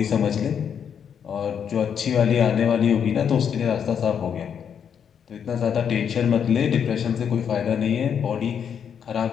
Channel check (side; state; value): right; quieter; 7.8 dB